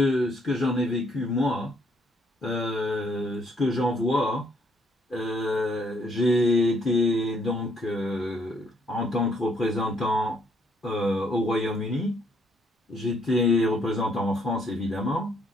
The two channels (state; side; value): normal; both; correlation 0.68